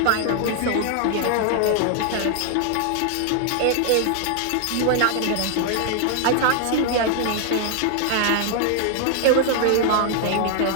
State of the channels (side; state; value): both; different; correlation 0.00